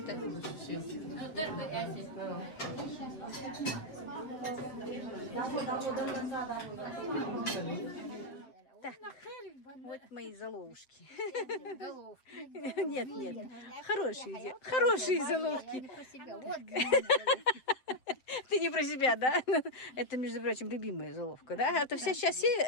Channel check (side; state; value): right; late; 7.8 ms